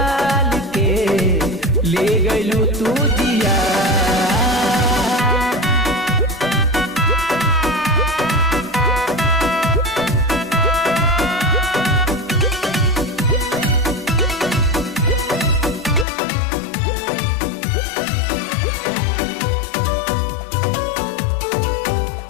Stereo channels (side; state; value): right; drops out; at 16.1 s